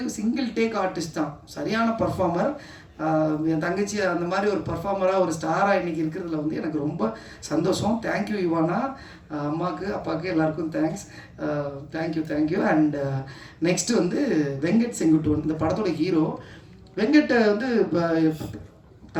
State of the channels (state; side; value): identical; both; correlation 1.00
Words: சிங்கிள் டேக் ஆர்டிஸ்ட் தான் சரியான பர்ஃபார்மர். என் தங்கச்சி அந்த மாதிரி ஒரு பர்ஃபார்மராக ஒரு ஸ்டாராக இன்றைக்கி இருக்கிறதுல வந்து எனக்கு ரொம்ப சந்தோஷம். தேங்க்யூ இவானா, அம்மாவுக்கு அப்பாவுக்கு எல்லாருக்கும் தேங்க்ஸ், தேங்க்யூ. அண்ட் நெக்ஸ்ட்டு வந்து வெங்கட் செங்குட்டுவன், இந்த படத்தோட ஹீரோ. வெங்கட்டை வந்து இப்போ